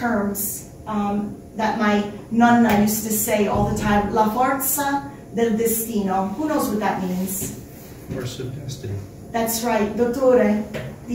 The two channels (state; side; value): identical; both; correlation 1.00